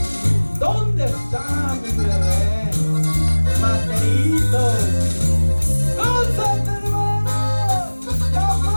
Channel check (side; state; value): both; inverted; correlation -1.00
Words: ¿Dónde está mi bebé? Mateito. ¡Gózate, hermano! ¡Ya